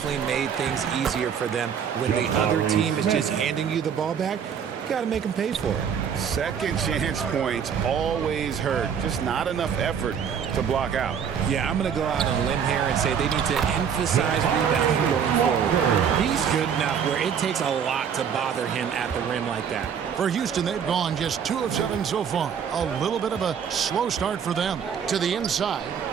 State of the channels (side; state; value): left; quieter; 7.6 dB